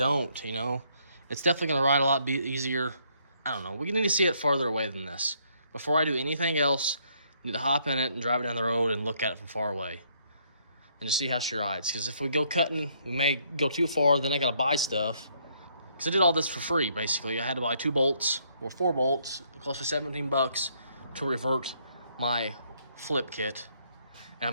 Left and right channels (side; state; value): both; inverted; correlation -0.69